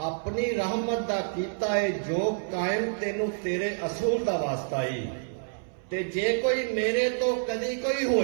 اپنی رحمت دا کیتا ہے جو قائم تینوں تیرے اصول دا واسطہ ہی، تے جے کوئی میرے تو کدی کوئی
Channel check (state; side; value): silent; left; 59 dB below the other